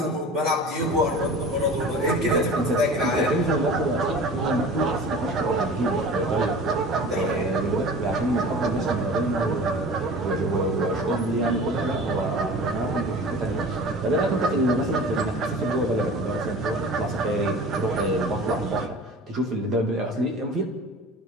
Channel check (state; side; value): normal; both; correlation 0.40